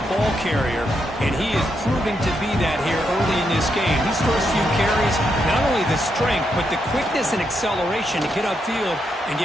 ball carrier, and he is proving to be that here early in this game. These first few carries, not only the strength, but the quickness and acceleration to get upfield and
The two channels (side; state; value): both; normal; correlation 0.81